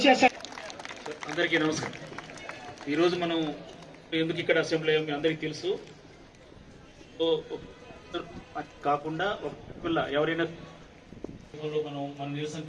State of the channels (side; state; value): both; identical; correlation 1.00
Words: అందరికీ నమస్కారం. ఈరోజు మనం ఎందుకు ఇక్కడ అసెంబ్లీ అయ్యాం మీ అందరికీ తెలుసు. కాకుండా ఒక పిల్ల ఎవరైనా మనం మన నిరసన